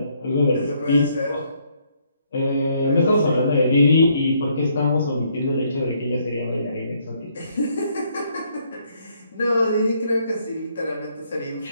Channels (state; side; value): inverted; both; correlation -0.70